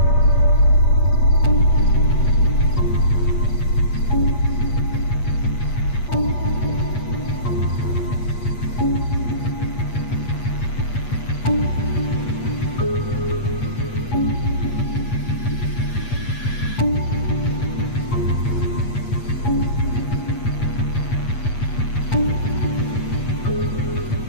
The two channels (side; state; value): right; late; 8.3 ms